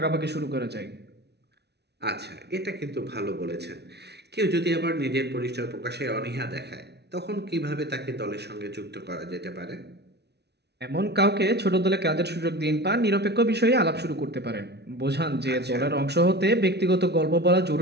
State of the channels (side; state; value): left; late; 0.49 ms